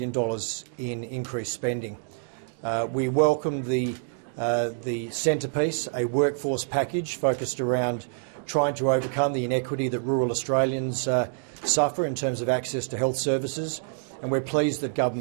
in increased spending. We welcome the centrepiece, a workforce package focused around trying to overcome the inequity that rural Australians suffer in terms of access to health services, and we're pleased that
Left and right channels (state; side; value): silent; left; digital silence